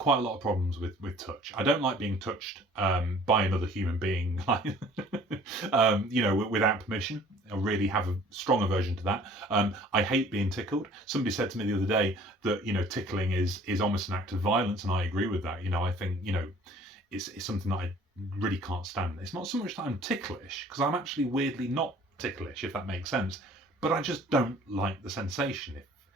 a lot of problems with touch. I don't like being touched by another human being, without permission. I really have a strong aversion to that. I hate being tickled. Somebody said to me the other day that tickling is almost an act of violence, and I agree with that. I think it's something that I really can't stand. It's not so much that I'm ticklish, because I'm actually weirdly not ticklish, if that makes sense. But I just don't like the sensation,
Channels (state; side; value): normal; both; correlation 0.52